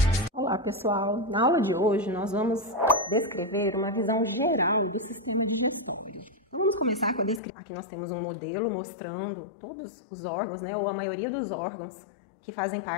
Olá pessoal, na aula de hoje nós vamos descrever uma visão geral do sistema digestório. Vamos começar com a descrição. Aqui nós temos um modelo mostrando todos os órgãos, né, ou a maioria dos órgãos que fazem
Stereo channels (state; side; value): drops out; right; at 7.4 s